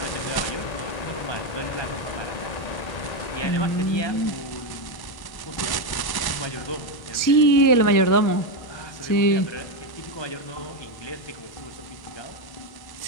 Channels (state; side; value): late; right; 1.1 ms